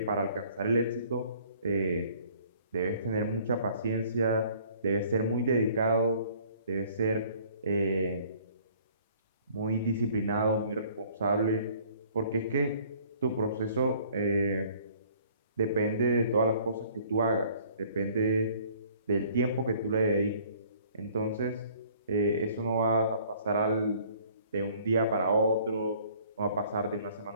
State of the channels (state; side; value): inverted; both; correlation -0.56